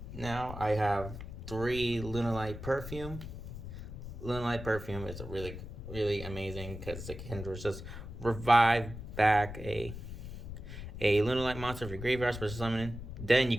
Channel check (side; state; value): left; noise; rumble, 10 dB below the sound